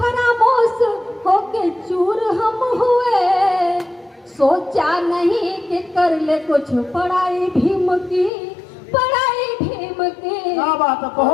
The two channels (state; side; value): drops out; right; at 8.3 s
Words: होके चूर हम हुए, सोचा नहीं कि कर ले कुछ पढ़ाई भीम की, पढ़ाई भीम की। क्या बात है,